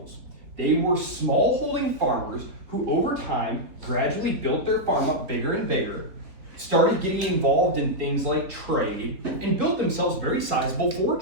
They were smallholding farmers who over time gradually built their farm up bigger and bigger, started getting involved in things like trade, and built themselves very sizable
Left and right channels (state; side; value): late; left; 4.0 ms